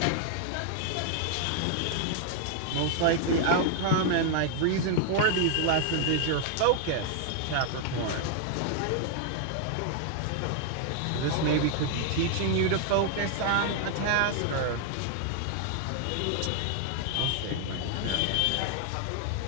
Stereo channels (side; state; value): both; different; correlation 0.00